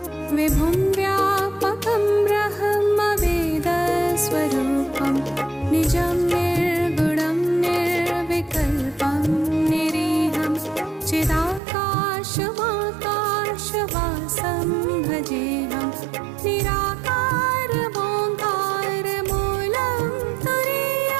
विभुं व्यापकं ब्रह्मवेदस्वरूपं निजं निर्गुणं निर्विकल्पं निरीहं चिदाकाशमाकाशवासं भजेऽहं निराकारमोङ्कारमूलं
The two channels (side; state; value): left; drops out; at 11.6 s